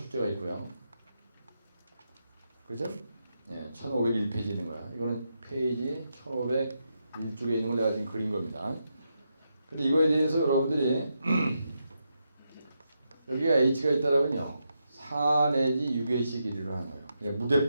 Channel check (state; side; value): inverted; both; correlation -0.84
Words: 있고요. 그죠? 예, 1501페이지 있는 거야. 이거는 페이지 1501쪽에 있는 걸 내가 지금 그린 겁니다. 근데 이거에 대해서 여러분들이 여기가 H가 있다라면요. 4 내지 6H 길이로 하는 거예요. 그냥